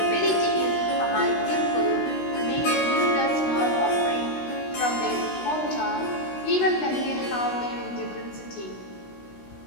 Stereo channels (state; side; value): late; right; 16 ms